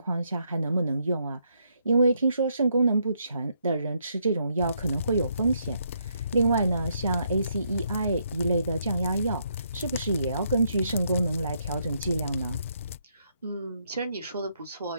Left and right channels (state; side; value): inverted; both; correlation -0.75